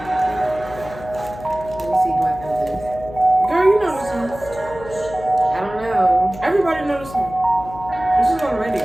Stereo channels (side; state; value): left; noise; hum, 15 dB below the sound